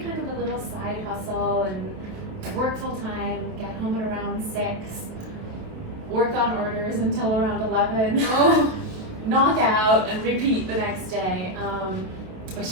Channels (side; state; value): left; late; 28 ms